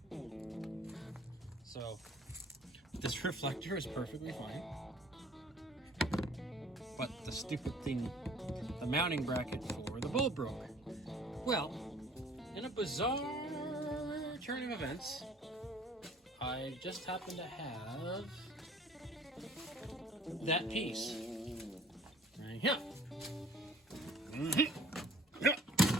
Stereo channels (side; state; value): both; normal; correlation 0.53